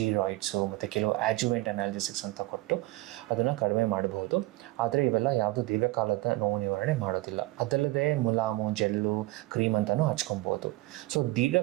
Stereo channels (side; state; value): left; quieter; 19.3 dB